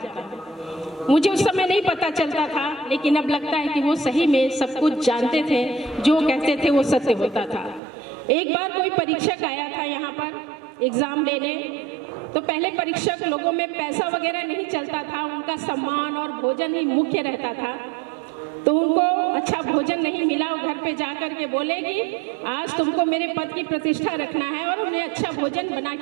हूँ। मुझे उस समय नहीं पता चलता था, लेकिन अब लगता है कि वो सही में सब कुछ जानते थे, जो कहते थे वो सत्य होता था। एक बार कोई परीक्षक आया था यहाँ पर एग्जाम लेने, तो पहले परीक्षक लोगों में पैसा वगैरह नहीं चलता था, उनका सम्मान और भोजन ही मुख्य रहता था। तो उनको अच्छा भोजन नहीं मिला, वो घर पे जाकर के बोले कि आज तुमको मेरे पद की प्रतिष्ठा रखना है और उन्हें अच्छा भोजन बना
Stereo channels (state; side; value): drops out; left; at 7.8 s